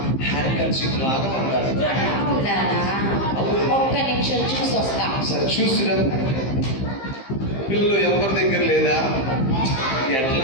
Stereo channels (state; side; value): late; right; 15 ms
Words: హ్యాండ్ కర్చీఫ్ లాగా ఉండాలి. ఒక్క నిమిషం చూసి వస్తా. సరే చూసిరా. పిల్లలు ఎవరి దగ్గర లేదా?